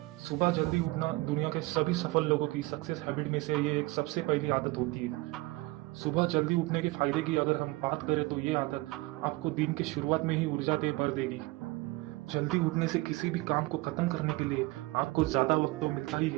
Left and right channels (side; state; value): left; quieter; 21.9 dB